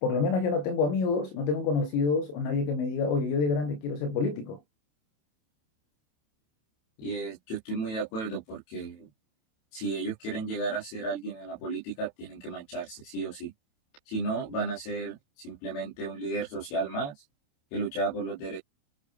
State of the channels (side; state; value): right; late; 27 ms